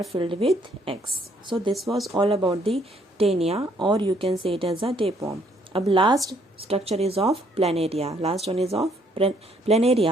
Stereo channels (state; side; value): normal; both; correlation 0.67